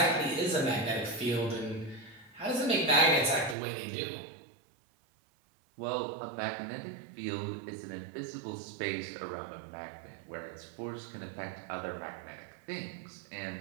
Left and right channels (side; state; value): left; drops out; at 3.6 s